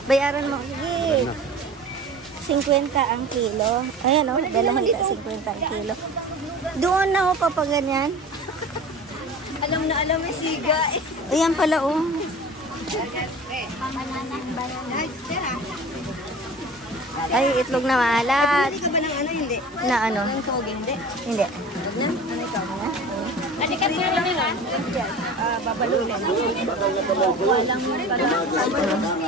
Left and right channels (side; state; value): both; normal; correlation 0.38